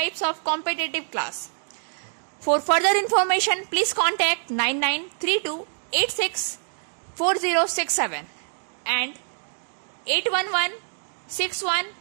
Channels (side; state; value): left; silent; digital silence